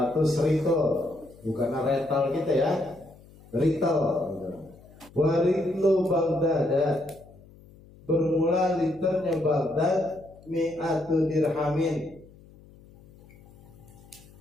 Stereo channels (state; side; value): noise; left; hum, 24 dB below the sound